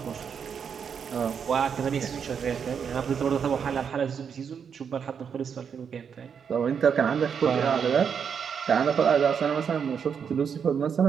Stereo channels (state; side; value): quieter; left; 7.0 dB